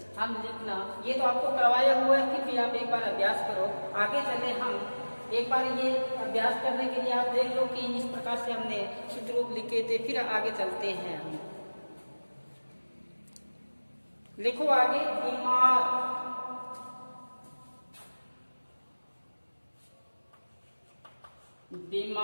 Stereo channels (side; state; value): both; inverted; correlation -1.00